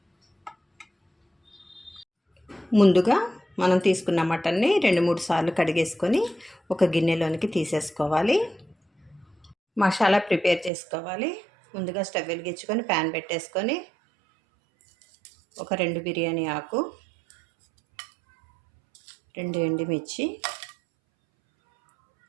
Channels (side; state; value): left; drops out; at 10.7 s